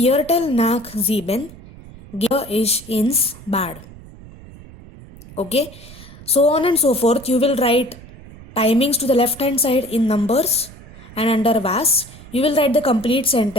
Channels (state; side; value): noise; right; rumble, 19 dB below the sound